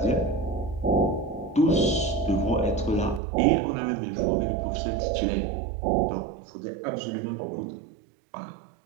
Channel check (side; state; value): left; drops out; at 3.2 s